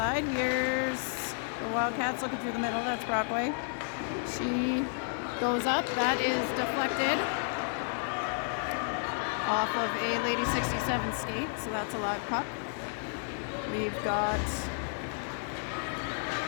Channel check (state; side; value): silent; right; 57 dB below the other